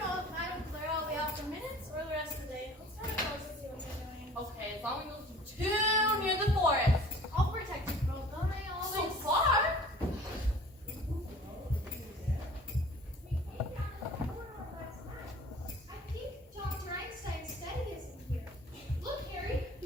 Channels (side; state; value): both; normal; correlation 0.47